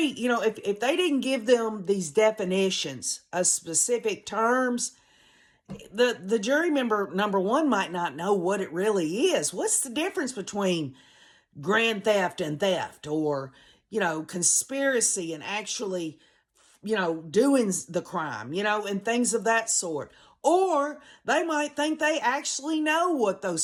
if they didn't give them these definitions of specific terms, the jury member, number one, might not know what it really is. What's the difference between grand theft and theft, or, conspiracy and actually, doing the crime, and things of that sort. Or they might think they actually know what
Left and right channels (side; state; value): both; identical; correlation 1.00